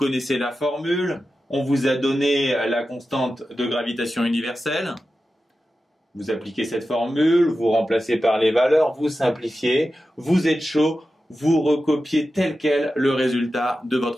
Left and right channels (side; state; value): both; normal; correlation 0.92